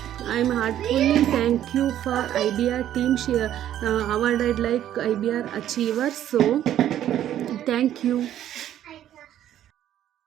I'm heartfully thank you for IBR team. She awarded like IBR achiever. So thank you.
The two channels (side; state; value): left; quieter; 11.5 dB